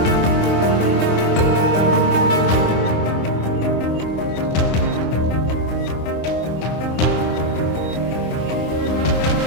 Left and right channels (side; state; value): right; late; 25 ms